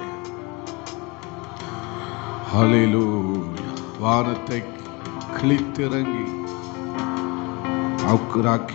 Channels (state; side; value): quieter; right; 26.0 dB